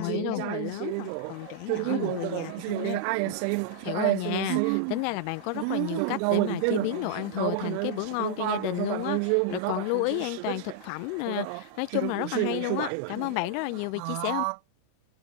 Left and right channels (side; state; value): both; different; correlation -0.01